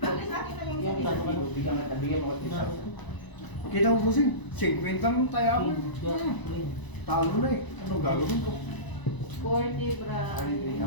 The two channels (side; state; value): right; late; 1.0 ms